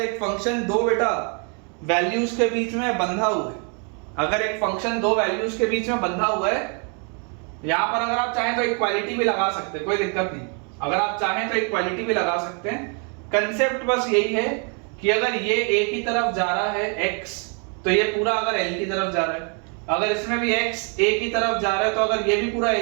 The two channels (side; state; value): left; quieter; 37.9 dB